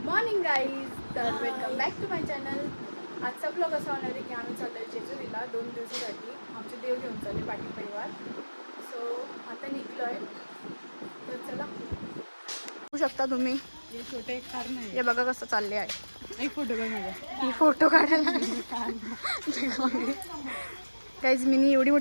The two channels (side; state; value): both; inverted; correlation -1.00